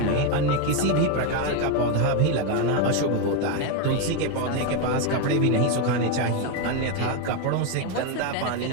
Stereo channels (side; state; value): both; different; correlation 0.02